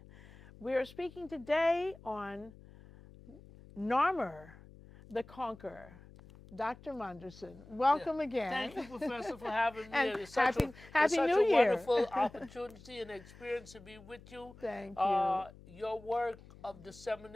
We are speaking today on Narmer, the Conqueror. Dr. Monderson, welcome again. Thank you, Professor, for having me. And It's such Happy New a Year. wonderful opportunity and experience to be with you. Thank you. Your work of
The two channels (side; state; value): left; noise; hum, 20 dB below the sound